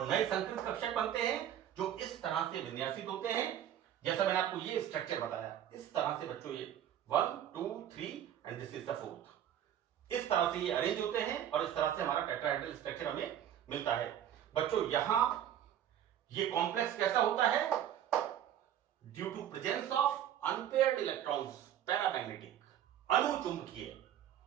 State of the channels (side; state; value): left; quieter; 10.5 dB